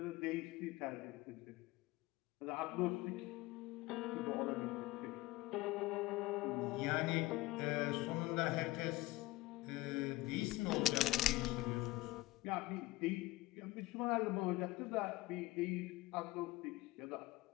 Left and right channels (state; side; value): quieter; right; 19.5 dB